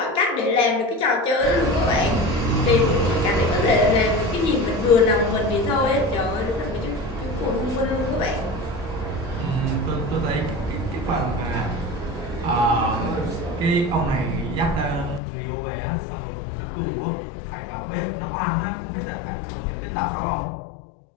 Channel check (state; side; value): drops out; right; at 15.2 s